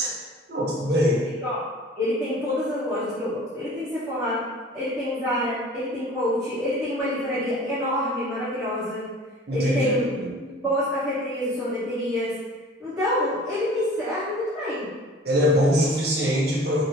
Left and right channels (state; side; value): normal; both; correlation 0.45